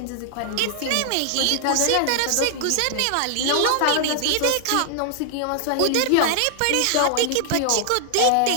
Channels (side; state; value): both; different; correlation 0.00